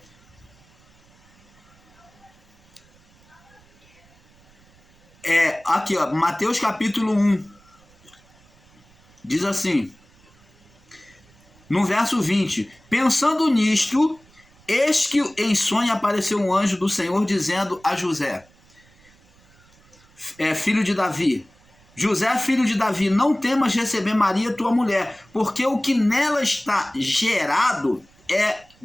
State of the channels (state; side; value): noise; right; rumble, 30 dB below the sound